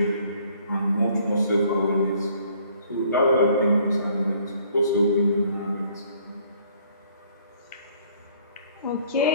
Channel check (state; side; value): inverted; both; correlation -0.60